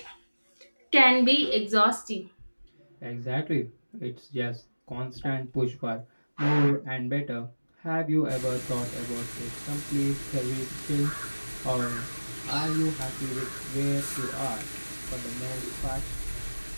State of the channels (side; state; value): both; inverted; correlation -1.00